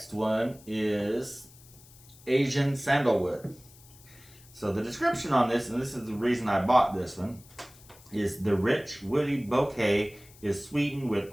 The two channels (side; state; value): left; noise; hiss, 24 dB below the sound